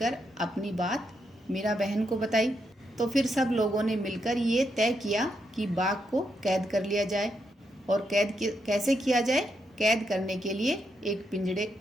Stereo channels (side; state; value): both; normal; correlation 0.81